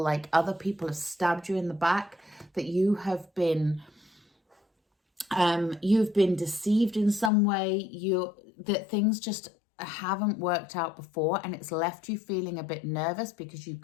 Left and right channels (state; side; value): drops out; right; at 7.3 s